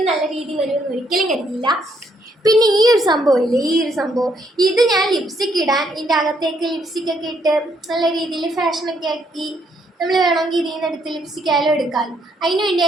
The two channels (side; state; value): both; normal; correlation 0.72